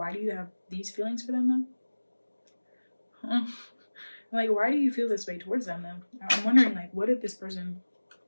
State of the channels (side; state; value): both; inverted; correlation -1.00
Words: do you have these feelings for them though? Like, why do you feel this way towards them though? I'm wondering, like, what did